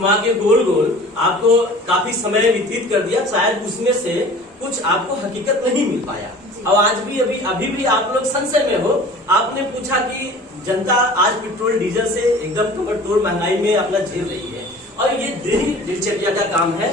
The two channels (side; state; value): both; normal; correlation 0.44